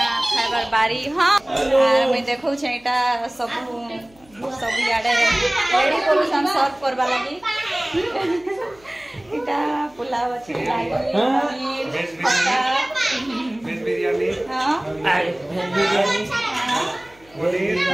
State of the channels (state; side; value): noise; left; hum, 28 dB below the sound